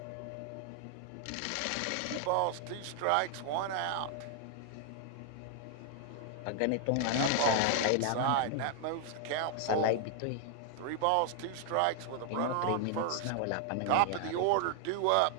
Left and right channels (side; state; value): both; different; correlation 0.00